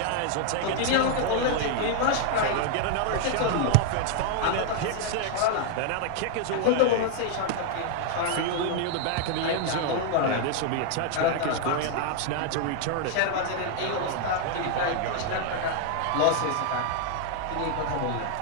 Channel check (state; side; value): different; both; correlation 0.00